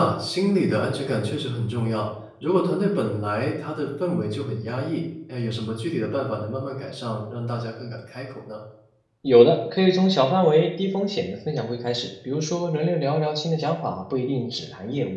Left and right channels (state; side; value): identical; both; correlation 1.00